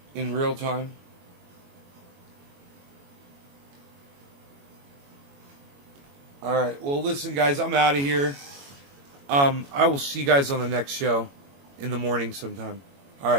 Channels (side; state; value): left; late; 21 ms